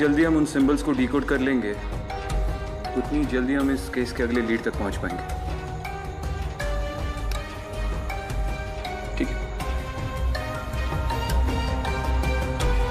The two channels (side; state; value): both; identical; correlation 1.00